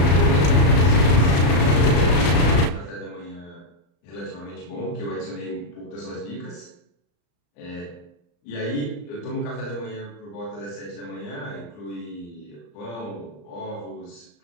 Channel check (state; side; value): late; right; 34 ms